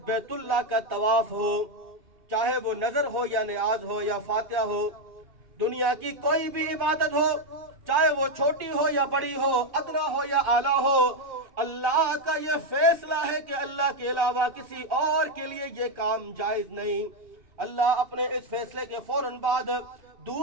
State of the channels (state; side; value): late; left; 2.5 ms